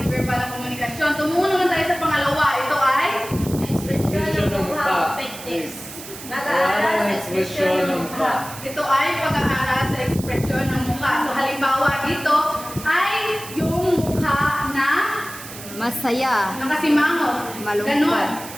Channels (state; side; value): noise; right; hiss, 13 dB below the sound